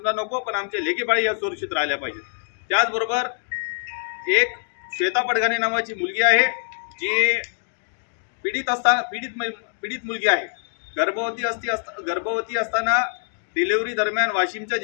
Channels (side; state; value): right; silent; digital silence